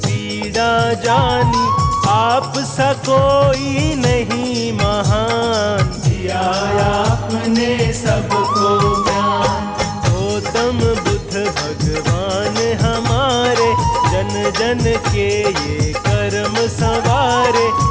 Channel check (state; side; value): identical; both; correlation 1.00